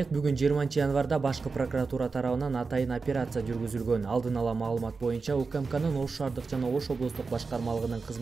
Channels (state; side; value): quieter; left; 4.4 dB